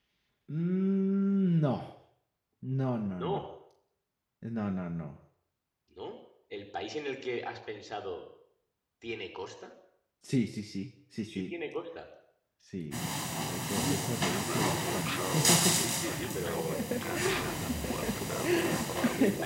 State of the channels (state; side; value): identical; both; correlation 1.00